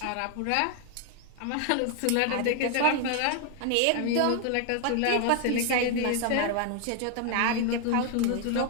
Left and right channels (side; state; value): both; different; correlation 0.00